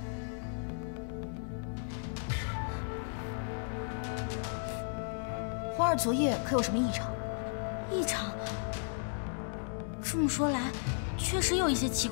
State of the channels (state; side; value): silent; right; digital silence